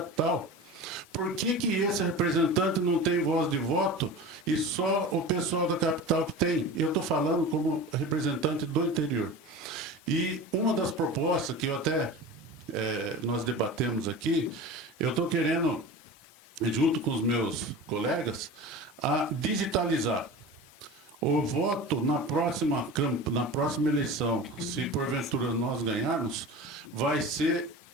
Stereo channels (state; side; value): normal; both; correlation 0.33